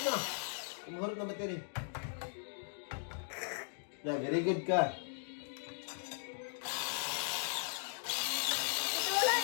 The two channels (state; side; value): silent; right; digital silence